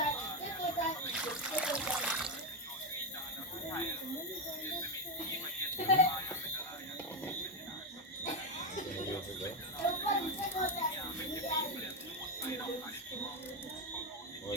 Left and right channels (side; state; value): both; normal; correlation 0.07